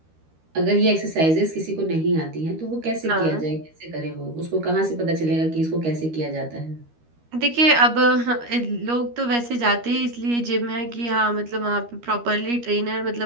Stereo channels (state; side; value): late; left; 13 ms